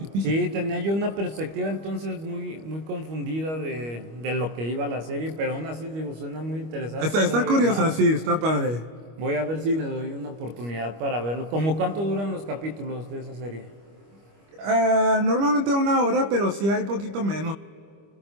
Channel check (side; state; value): left; late; 25 ms